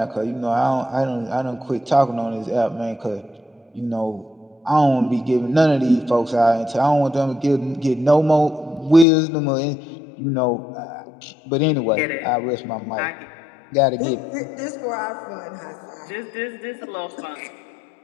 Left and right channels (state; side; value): drops out; right; at 9.1 s